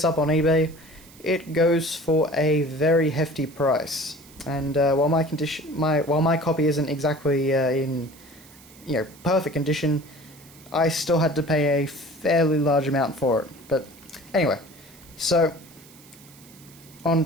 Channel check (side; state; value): right; noise; hiss, 23 dB below the sound